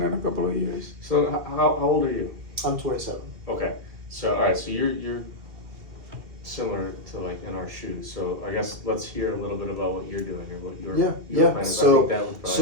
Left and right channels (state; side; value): late; left; 2.2 ms